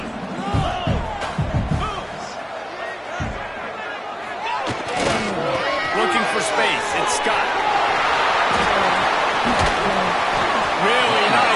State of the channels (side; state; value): both; identical; correlation 1.00